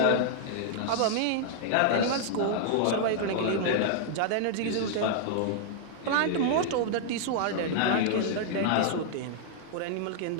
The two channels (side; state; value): both; different; correlation -0.01